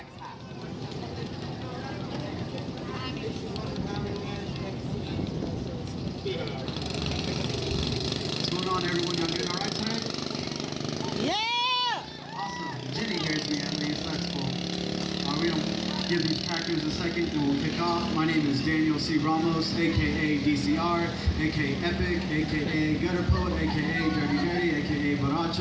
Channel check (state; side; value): identical; both; correlation 1.00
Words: What's going on, everyone? Y'all doing all right tonight? Yeah! Awesome. Jenny hears me at least. That's cool. We don't give these crackers a second and we'll kick off. My name is Daniel C. Ramos, aka DCR, aka Epic, aka Gutter Poet, aka Dirty Dirty, aka